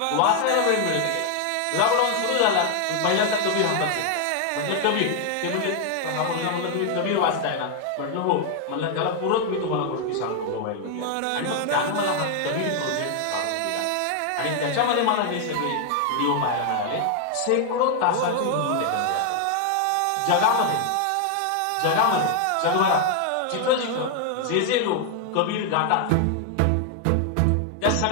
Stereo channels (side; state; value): both; different; correlation 0.00